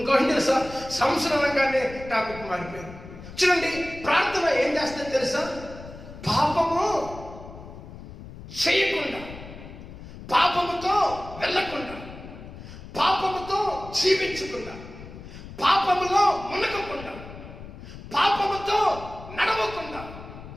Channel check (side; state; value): left; noise; rumble, 14 dB below the sound